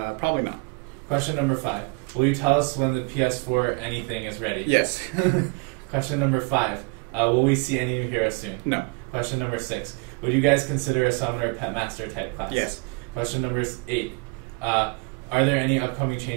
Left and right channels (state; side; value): quieter; left; 30.0 dB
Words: not. Question number 5. Will you tell us when the PS4 anything is ready? Yes. Question number 5. Will we see any new heroes soon? No. Question number 6. Would you guys consider a summoner pet master type class? Yes. Question number 8. Are there any upcoming